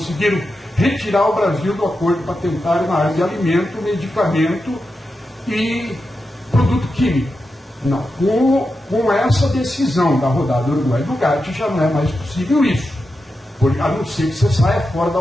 retirar o Brasil do acordo patentário na área de alimento, medicamento e produto químico. Não, com essa decisão da rodada Uruguai do GATT já não é mais possível isso, a não ser que você saia fora da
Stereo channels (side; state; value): both; normal; correlation 0.89